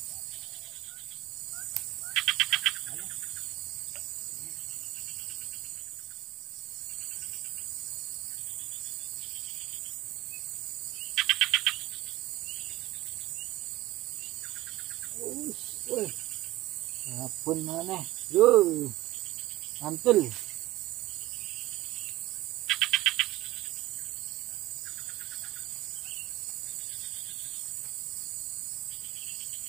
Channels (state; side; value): quieter; left; 17.1 dB